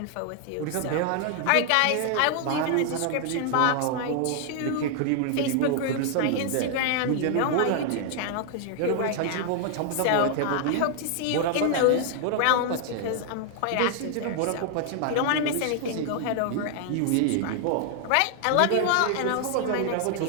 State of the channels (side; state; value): both; different; correlation 0.00